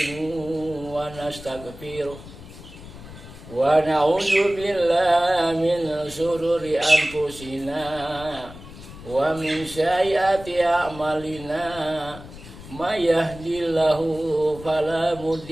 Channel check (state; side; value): noise; left; rumble, 16 dB below the sound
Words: wa nastaghfiruh wa na'udzu billahi min shururi anfusina wa min sayyiati a'malina may yahdihillahu fala